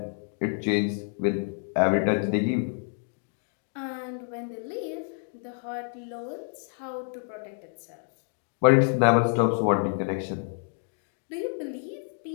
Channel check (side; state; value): right; silent; 59 dB below the other